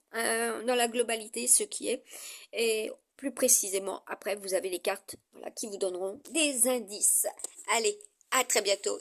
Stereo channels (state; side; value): identical; both; correlation 1.00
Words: dans la globalité ce qui est, et plus précisément après vous avez les cartes, voilà, qui vous donneront des indices. Allez, à très bientôt